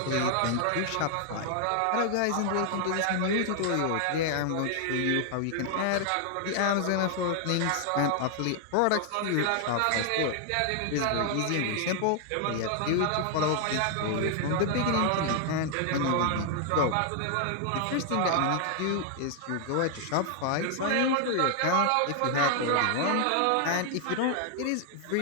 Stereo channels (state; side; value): different; both; correlation 0.00